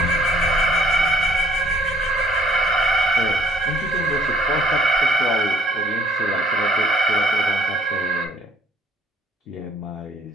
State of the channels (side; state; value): both; normal; correlation 0.62